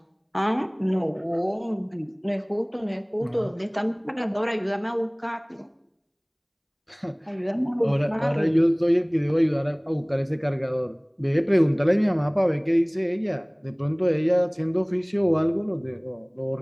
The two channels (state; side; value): identical; both; correlation 1.00